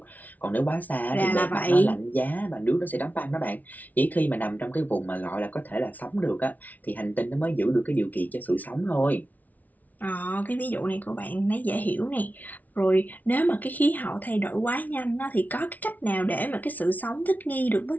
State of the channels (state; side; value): late; right; 0.076 ms